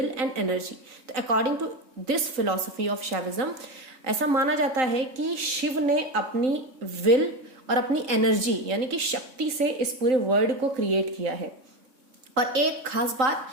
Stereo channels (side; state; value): left; late; 3.6 ms